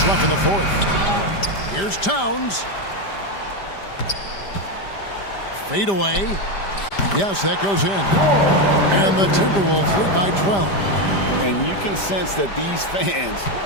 left in the fourth. Here's Towns. Fade away. Yes, that goes in. And the Timberwolves lead by 12. And you can sense that these fans,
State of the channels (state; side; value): late; right; 5.0 ms